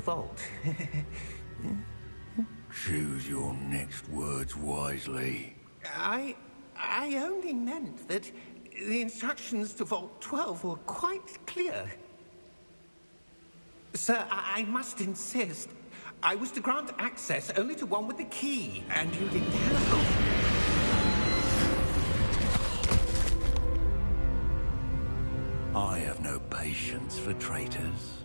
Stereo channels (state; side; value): inverted; both; correlation -1.00